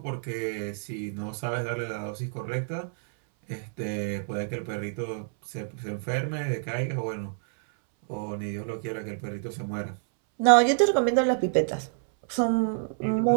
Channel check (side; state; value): left; silent; 60 dB below the other